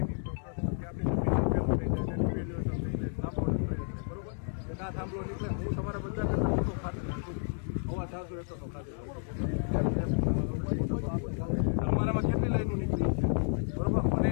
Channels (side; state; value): right; silent; 57 dB below the other